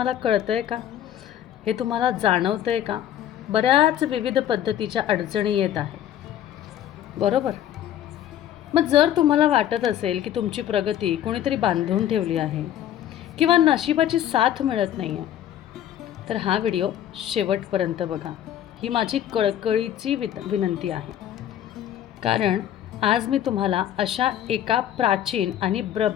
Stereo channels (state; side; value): quieter; right; 11.1 dB